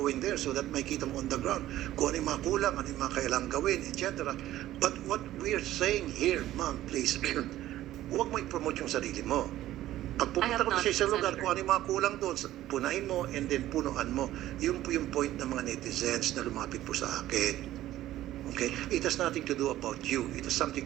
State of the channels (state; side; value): quieter; left; 14.2 dB